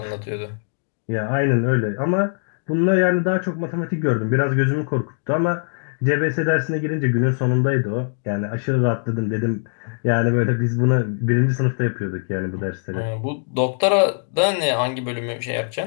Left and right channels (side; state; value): right; silent; digital silence